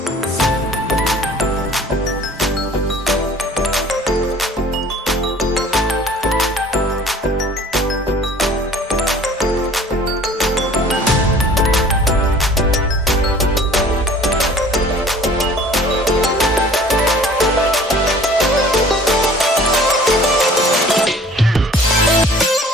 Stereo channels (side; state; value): both; normal; correlation 0.49